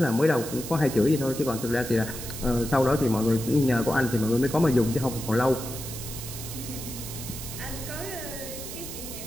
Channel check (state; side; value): noise; right; hiss, 9 dB below the sound